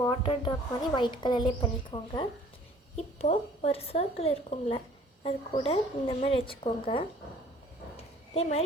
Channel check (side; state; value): both; normal; correlation 0.54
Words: வாட்டர் ட்ராப் மாதிரி ஒயிட் கலர்லேயே பண்ணிக்கோங்க. இப்போது ஒரு சர்க்கிள் இருக்கும்ல, அது கூட இந்த மாதிரி வச்சுக்கோங்க. இதே